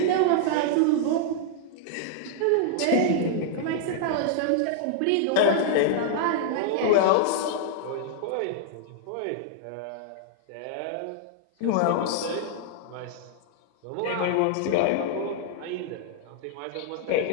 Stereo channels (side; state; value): both; different; correlation -0.01